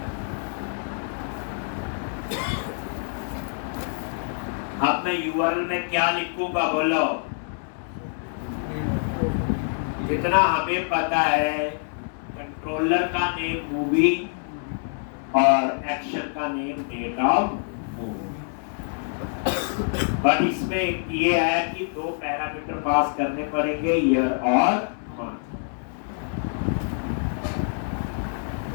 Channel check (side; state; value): right; silent; 61 dB below the other